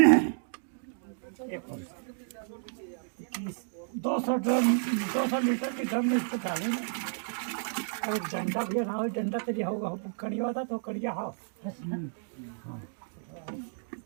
200 लीटर के ड्रम में इसको डालेंगे। और डंडा भी ना हो, डंडा तेरी होगा कड़िया था तो कड़िया हो।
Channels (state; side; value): silent; left; digital silence